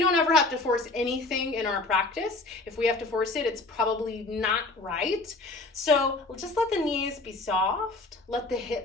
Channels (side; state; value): right; quieter; 3.2 dB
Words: ever have to force anything in our practice. If we have to force it, it's probably not right. So just let the knees be soft. Let the